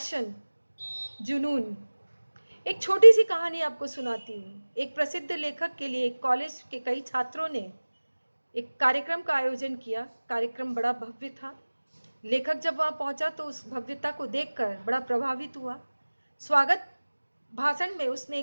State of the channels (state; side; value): inverted; both; correlation -1.00